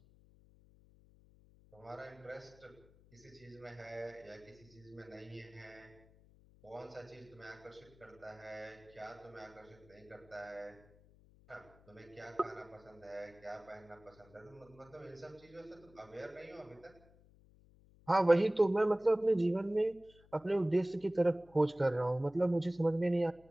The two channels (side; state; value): left; noise; hum, 26 dB below the sound